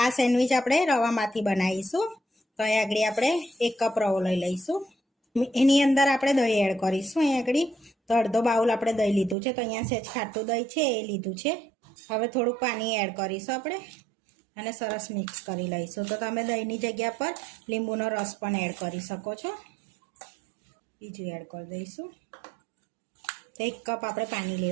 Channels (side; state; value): left; drops out; at 9.3 s